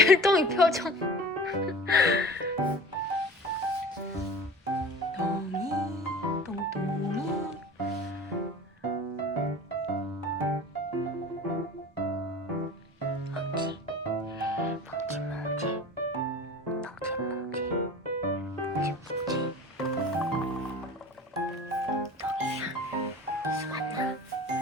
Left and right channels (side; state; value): both; normal; correlation 0.39